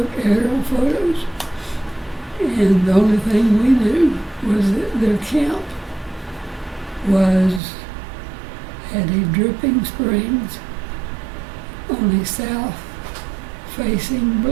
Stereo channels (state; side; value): drops out; left; at 7.6 s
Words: aerial photos, and the only thing we knew was that their camp was at a Dripping Springs on a south-facing